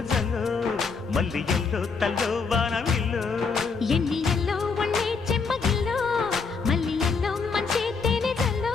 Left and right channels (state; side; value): quieter; right; 5.0 dB